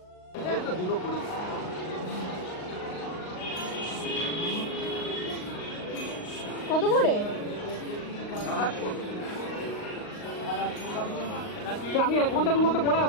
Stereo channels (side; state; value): right; late; 38 ms